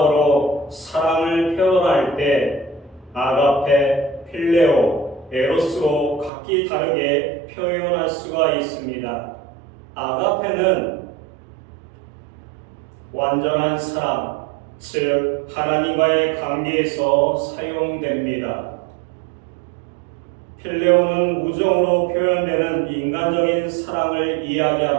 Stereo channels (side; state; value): left; drops out; at 6.3 s